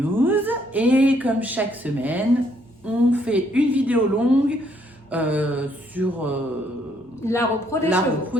et comme chaque semaine, on fait une vidéo longue sur la repro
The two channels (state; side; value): normal; both; correlation 0.69